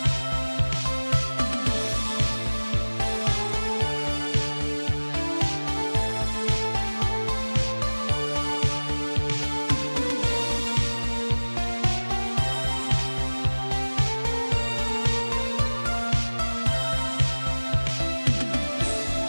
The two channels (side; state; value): both; inverted; correlation -1.00